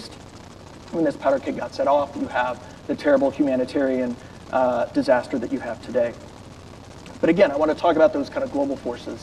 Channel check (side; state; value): both; identical; correlation 1.00